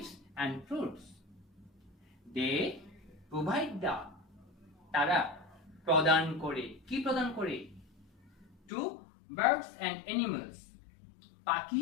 and fruits. They provide the, তারা প্রদান করে, কি প্রদান করে? to birds and animals,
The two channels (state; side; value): drops out; right; at 8.6 s